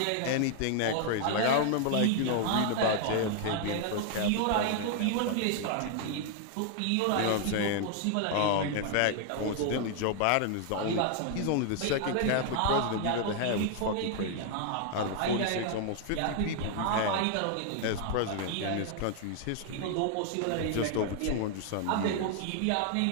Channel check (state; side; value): different; both; correlation 0.00